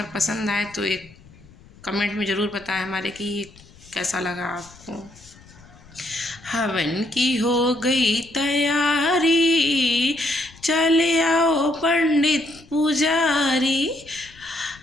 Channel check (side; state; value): left; noise; rumble, 24 dB below the sound